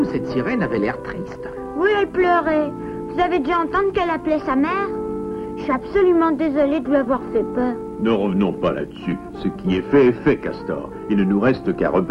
cette sirène avait l'air triste. Oui, elle pleurait. Vous avez dû entendre qu'elle appelait sa mère? Je suis absolument désolée de lui avoir fait peur. Ne revenons pas là-dessus. Ce qui est fait, Castor. Il ne nous reste qu'à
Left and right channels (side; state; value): both; identical; correlation 1.00